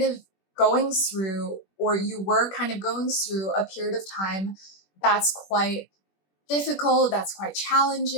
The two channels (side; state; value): right; late; 21 ms